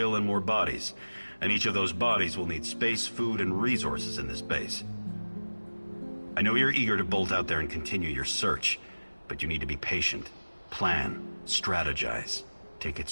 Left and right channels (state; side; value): inverted; both; correlation -1.00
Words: and more bodies. And each of those bodies will need space, food, and resources in this base. I know you're eager to bolt out there and continue your search, but you need to be patient. Plan, strategize, take it